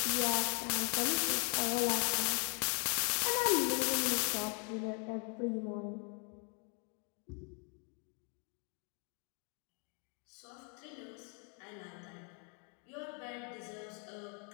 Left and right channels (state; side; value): quieter; right; 38.7 dB